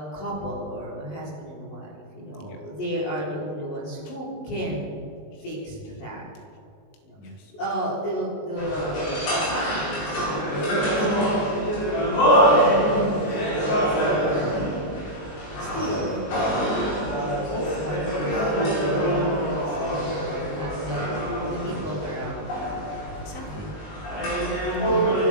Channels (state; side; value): late; right; 19 ms